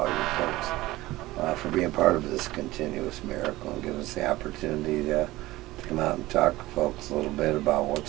you folks for being part of this continuous miracle and giving us the opportunity to come out and talk to folks a little bit about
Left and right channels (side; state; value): left; quieter; 18.1 dB